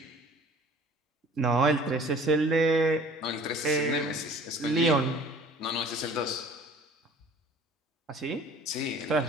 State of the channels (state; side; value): normal; both; correlation 0.48